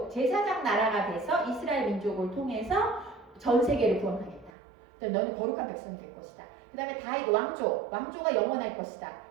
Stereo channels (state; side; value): drops out; left; at 4.5 s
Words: 제사장 나라가 돼서 이스라엘 민족을 통해서 전 세계를 구원하겠다. 너는 거룩한 백성이 될 것이다. 그 다음에 다윗 왕조가 영원할 것이다.